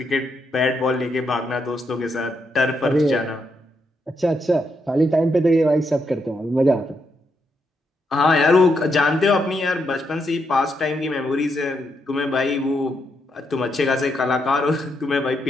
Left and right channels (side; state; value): both; normal; correlation 0.80